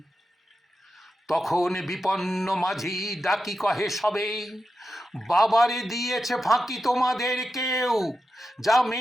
তখন বিপন্ন মাঝি ডাকি কহে সবে, বাবারে দিয়েছে ফাঁকি তোমাদের কেউ, যা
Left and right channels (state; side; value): normal; both; correlation 0.90